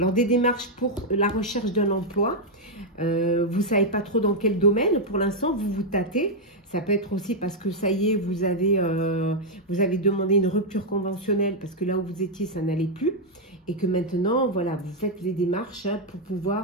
des démarches pour la recherche d'un emploi. Vous ne savez pas trop dans quel domaine. Pour l'instant, vous vous tâtez. Ça peut être aussi parce que ça y est, vous avez demandé une rupture conventionnelle parce que là où vous étiez, ça n'allait plus. Et que maintenant, voilà, vous faites les démarches hein, pour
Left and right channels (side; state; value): both; normal; correlation -0.02